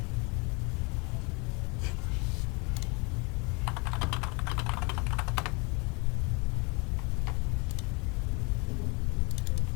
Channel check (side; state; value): right; quieter; 30.1 dB